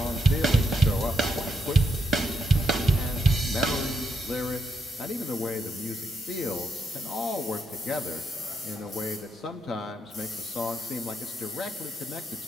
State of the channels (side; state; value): both; normal; correlation 0.79